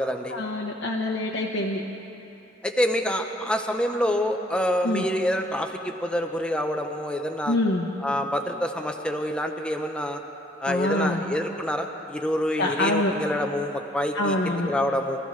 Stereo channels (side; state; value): both; normal; correlation 0.63